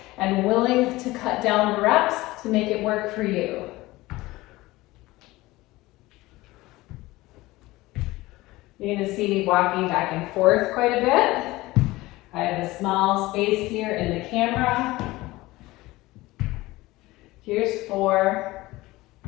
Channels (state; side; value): quieter; right; 19.3 dB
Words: and willing to cut down the reps to make it work for you. You're going to see me walking back and forth quite a bit. I have a small space here in the camera. Here's 4.